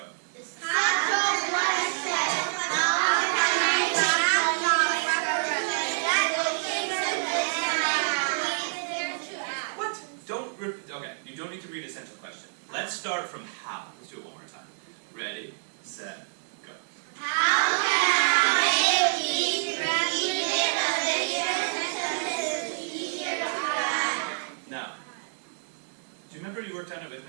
What? Don't repeat. Okay, you don't need to read essential question. Let's start from how. Let's do it one more time. Ready, set, go. How can I make these repeated addition sentences easier to add? Now, do you remember you worked on it with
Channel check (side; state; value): left; silent; digital silence